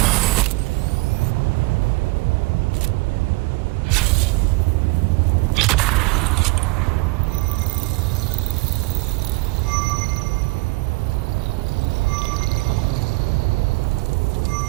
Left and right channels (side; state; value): left; quieter; 25.7 dB